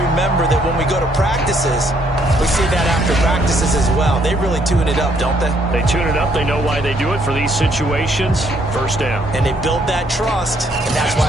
that when we go to practices, we see that after practices as well. They really tune it up, don't they? They tune it up. They know why they do it for these situations. 1st down. And they build that trust, and that's why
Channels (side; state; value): both; normal; correlation 0.68